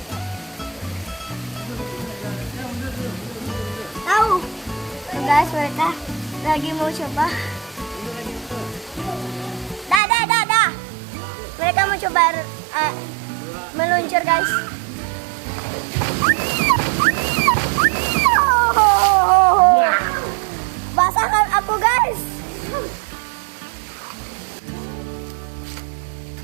Tahu. Tuh guys, mereka lagi mau coba. Dah. Mereka mau coba meluncur guys.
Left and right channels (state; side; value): drops out; left; at 10.0 s